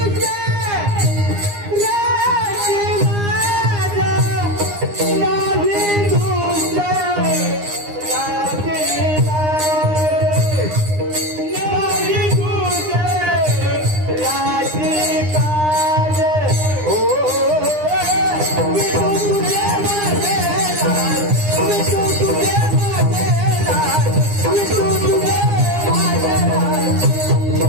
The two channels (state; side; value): late; left; 9.8 ms